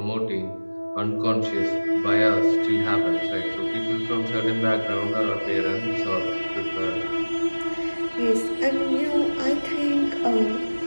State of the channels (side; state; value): both; inverted; correlation -1.00